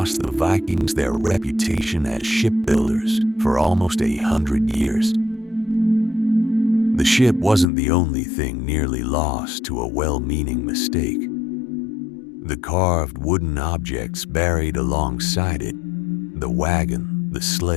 the Vikings their reputation as shipbuilders for almost 100 years. The ship wasn't the only thing nearly lost to a well-meaning mistake. The carved wooden objects buried alongside it, the wagon, the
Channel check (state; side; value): drops out; right; at 7.7 s